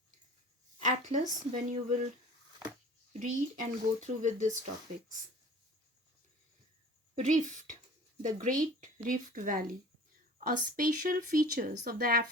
atlas when you will read and go through with these topics. Rift, the Great Rift Valley. A special features of the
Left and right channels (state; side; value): normal; both; correlation 0.44